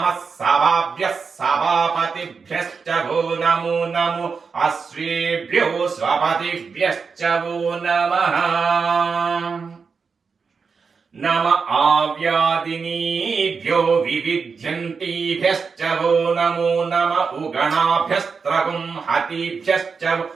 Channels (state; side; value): quieter; left; 5.3 dB